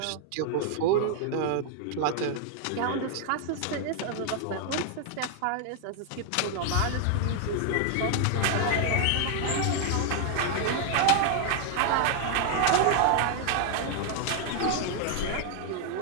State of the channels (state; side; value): different; both; correlation 0.00